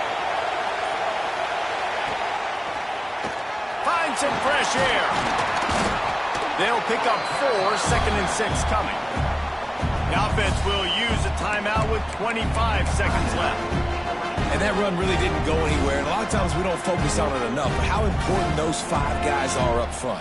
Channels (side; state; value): both; identical; correlation 1.00